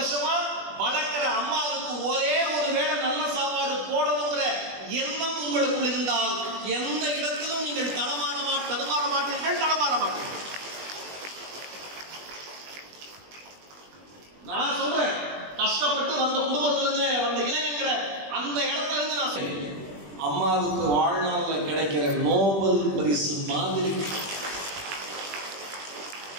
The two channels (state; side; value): late; left; 20 ms